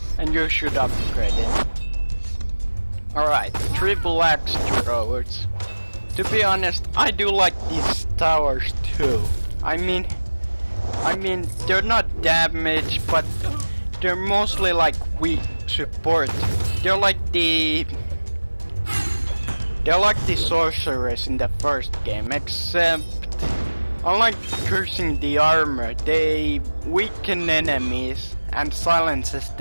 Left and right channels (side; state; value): both; inverted; correlation -1.00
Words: and you should upgrade it. Alright, triple axe throwers. To be honest, I do like these towers too. I mean, they're not damaged, but they're mostly like weak support. They're like the sorcerers in the first game, except unlike cursing the armor, they weaken enemies and silences